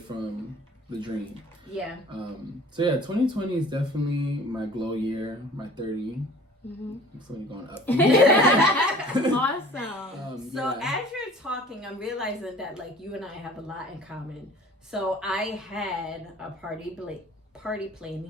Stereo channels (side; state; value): both; normal; correlation 0.48